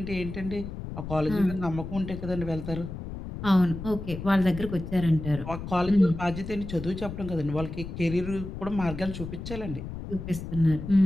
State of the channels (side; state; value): left; noise; rumble, 8 dB below the sound